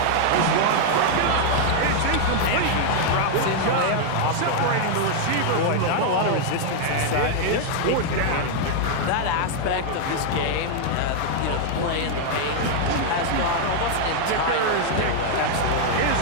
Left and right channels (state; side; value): different; both; correlation 0.00